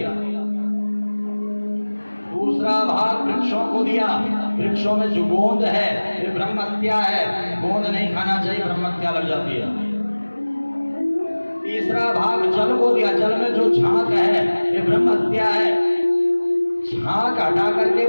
दूसरा भाग वृक्षों को दिया। वृक्षों में जो गोंद है ये ब्रह्महत्या है, गोंद नहीं खाना चाहिए, ब्रह्महत्या लग जाती है। तीसरा भाग जल को दिया। जल में जो झांक है ये ब्रह्महत्या है, झांक हटा करके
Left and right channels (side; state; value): both; inverted; correlation -1.00